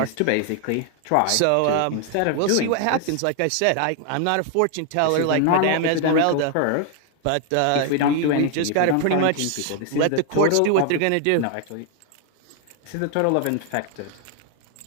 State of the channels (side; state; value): both; different; correlation 0.01